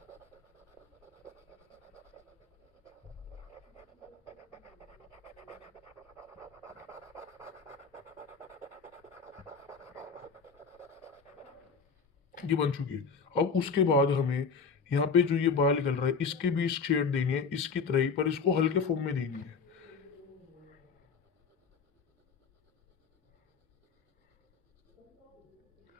ये बन चुकी है। अब उसके बाद हमें यहाँ पे जो ये बाल निकल रहा है इसके भी शेड देनी है इसकी तरह ही, पर इसको हल्के फॉर्म में देनी है।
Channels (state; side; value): quieter; right; 5.3 dB